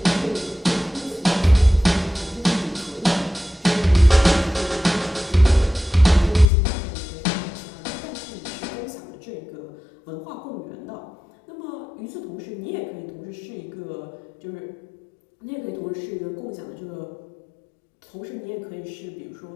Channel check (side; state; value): right; drops out; at 6.5 s